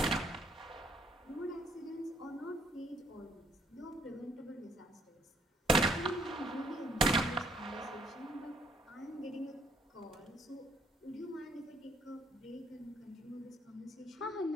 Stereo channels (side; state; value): both; normal; correlation 0.64